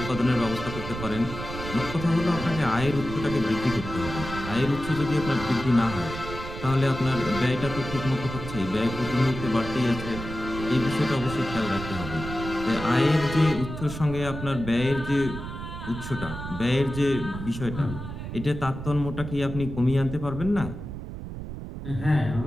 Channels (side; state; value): right; noise; rumble, 8 dB below the sound